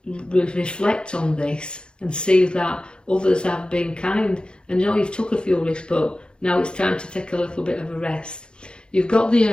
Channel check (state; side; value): late; right; 0.051 ms